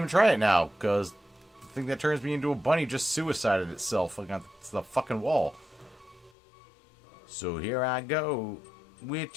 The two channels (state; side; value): drops out; right; at 6.3 s